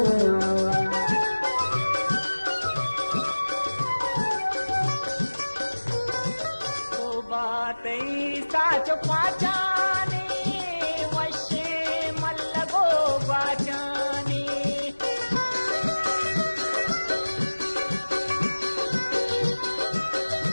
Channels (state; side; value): inverted; both; correlation -1.00